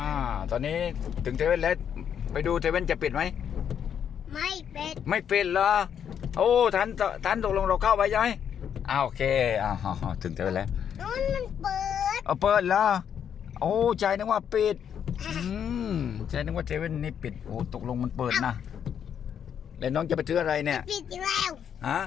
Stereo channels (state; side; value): quieter; right; 8.4 dB